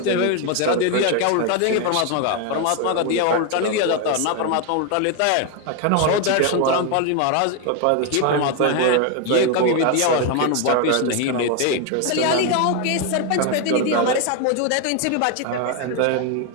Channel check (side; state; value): both; different; correlation 0.01